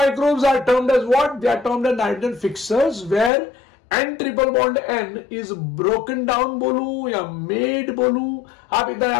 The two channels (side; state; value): right; drops out; at 3.3 s